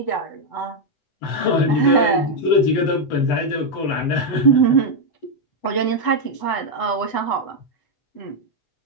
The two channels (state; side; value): late; right; 8.0 ms